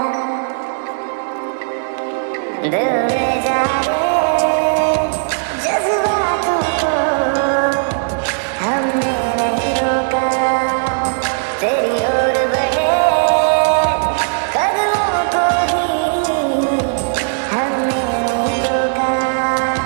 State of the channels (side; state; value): left; silent; digital silence